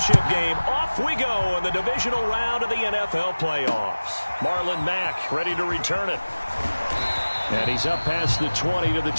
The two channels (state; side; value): inverted; both; correlation -1.00